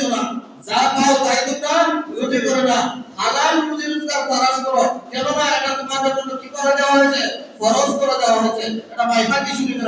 না, যা পাও তাই তোমরা রুজি করো না। হালাল রুজি রোজগার তালাশ করো। কেননা এটা তোমাদের জন্য কি করে দেওয়া হয়েছে? ফরজ করে দেওয়া হয়েছে। এটা বাইহাকি শরীফের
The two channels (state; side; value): identical; both; correlation 1.00